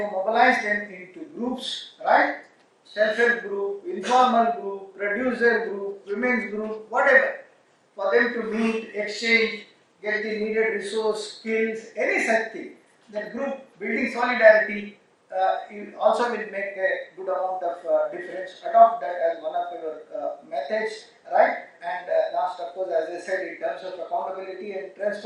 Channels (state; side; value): identical; both; correlation 1.00